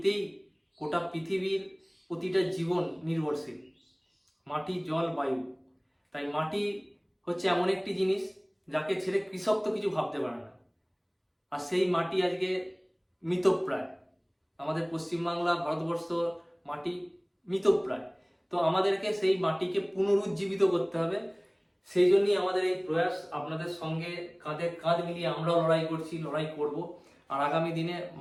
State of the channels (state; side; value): identical; both; correlation 1.00